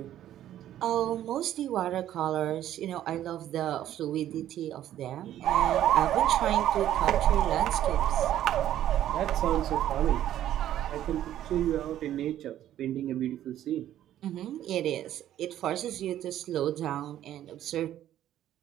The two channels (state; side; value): quieter; left; 12.0 dB